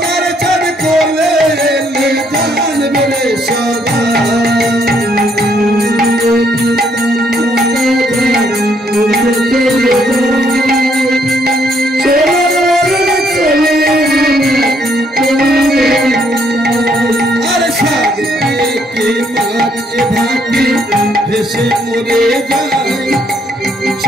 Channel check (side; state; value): both; normal; correlation 0.70